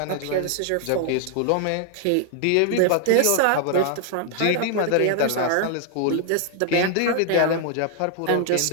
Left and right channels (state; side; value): different; both; correlation 0.00